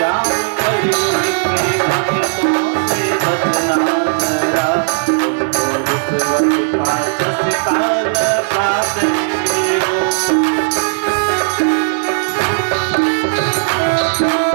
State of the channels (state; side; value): silent; left; digital silence